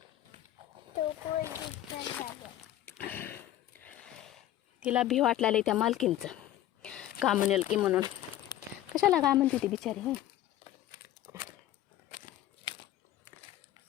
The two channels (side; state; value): right; quieter; 13.2 dB